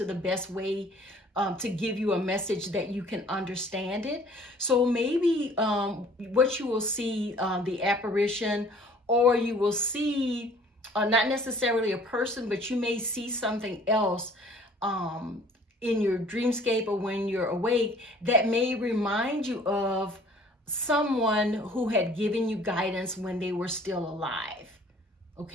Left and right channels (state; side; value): normal; both; correlation 0.53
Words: the best way to give you a message that you can understand it. So maybe what you will see, the apparition, or you will see not necessarily a person, but you may see something else in your dreamscape or when you're awake that may remind you of someone who had given you guidance when they were still alive.